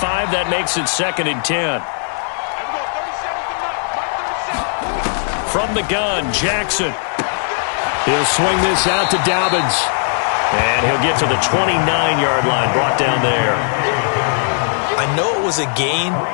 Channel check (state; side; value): silent; right; digital silence